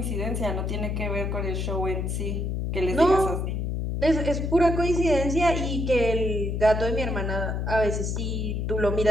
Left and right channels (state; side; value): noise; left; hum, 1 dB below the sound